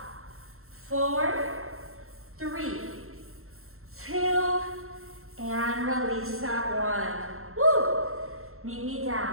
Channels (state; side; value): late; left; 0.62 ms